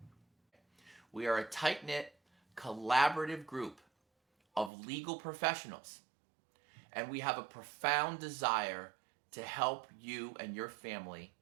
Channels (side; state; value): left; drops out; at 4.7 s